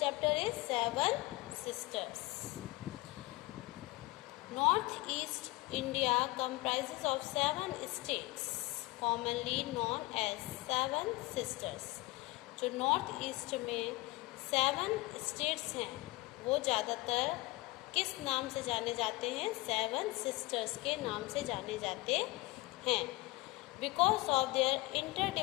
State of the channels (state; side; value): quieter; right; 21.6 dB